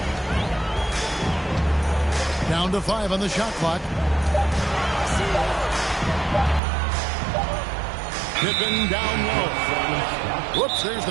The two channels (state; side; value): drops out; left; at 6.6 s